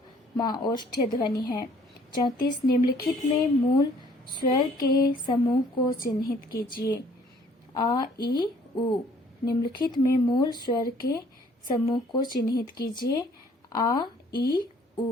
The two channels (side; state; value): both; normal; correlation 0.59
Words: म ओष्ठ्य ध्वनि है। 34 निम्नलिखित में मूल स्वर के समूह को चिन्हित कीजिए। आ, ई, उ। निम्नलिखित में मूल स्वर के समूह को चिन्हित कीजिए। आ, ई,